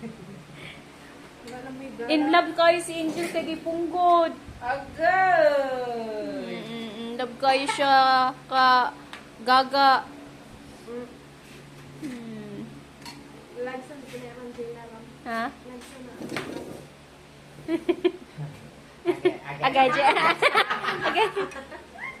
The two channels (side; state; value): both; identical; correlation 1.00